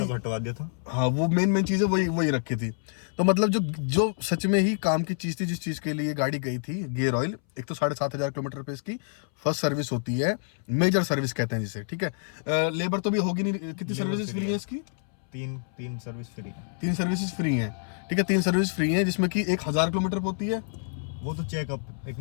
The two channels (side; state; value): right; silent; 59 dB below the other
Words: हटवा दिया था। हाँ, वो मेन चीजें वही रखी थी। तो मतलब जो सच में ही काम की चीज थी, जिस चीज के लिए गाड़ी गई थी, गियर ऑयल, एक तो 7,500 किलोमीटर पे इसकी फर्स्ट सर्विस होती है, मेजर सर्विस कहते हैं जिसे, ठीक है। लेबर तो भी होगी नहीं। कितनी सर्विसेज फ्री है इसकी? तीन सर्विस फ्री है। 3 सर्विसेज फ्री हैं, ठीक है। 3 सर्विस फ्री हैं जिसमें कि 1,000 किलोमीटर होती है। वो तो चेकअप, एक